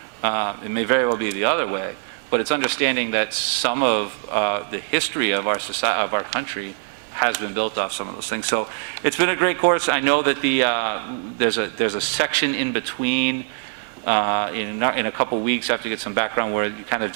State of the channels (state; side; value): silent; left; digital silence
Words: It may very well be the other way, but it's understanding that some of the history of our society, of our country, has been built off some of those things. So it's been a great course. I know that there's a section in between. In a couple weeks, I have to get some background where you kind of